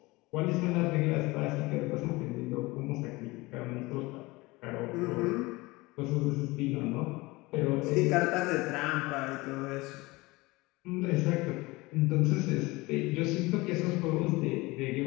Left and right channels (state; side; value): quieter; right; 22.3 dB